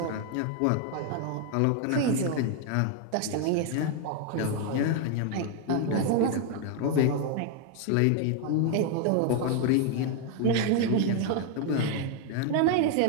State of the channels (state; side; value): different; both; correlation 0.01